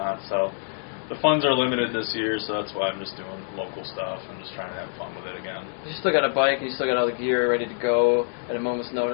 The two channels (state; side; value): silent; right; 61 dB below the other